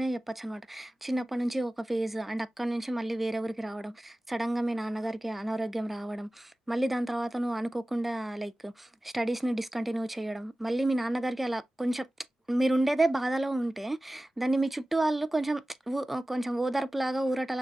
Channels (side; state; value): both; normal; correlation 0.96